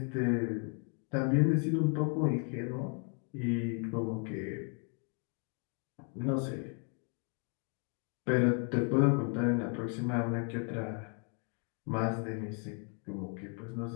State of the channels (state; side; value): quieter; right; 38.8 dB